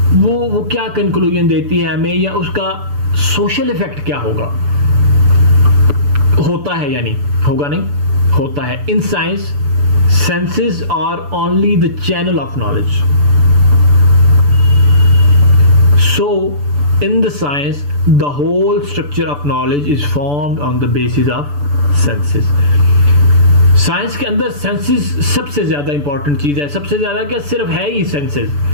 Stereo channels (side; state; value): left; late; 6.9 ms